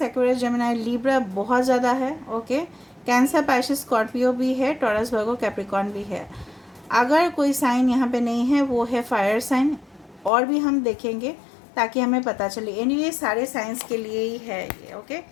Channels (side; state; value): right; drops out; at 10.3 s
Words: Aquarius, Gemini, Libra बहुत ज़्यादा है, ओके। कैंसर, पाइशिस, स्कॉर्पियो भी है, टॉरस, वर्गो, कैप्रिकॉर्न भी है। अगर कोई साइन यहाँ पे नहीं है वो है फायर साइन, और भी हम देखेंगे ताकि हमें पता चले। एनीवे सारे साइंस के लिए ही है ये, ओके।